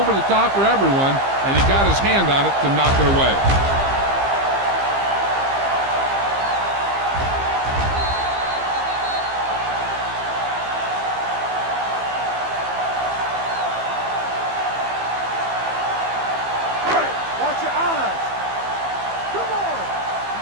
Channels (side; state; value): left; late; 15 ms